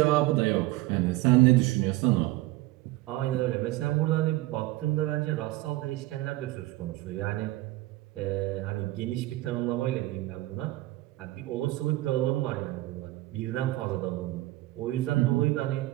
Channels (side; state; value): left; quieter; 18.2 dB